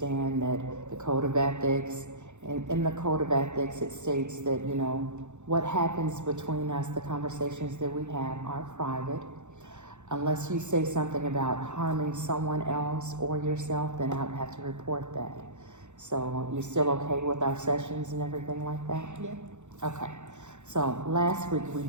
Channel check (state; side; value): late; left; 0.84 ms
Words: that the Code of Ethics, in the Code of Ethics, it states that, what happens between us, the conversations that we have are private. Unless you say something about harming someone else or yourself, then I would have to report that. So you're still okay with our sessions and everything like that? Yeah. Okay. So last week we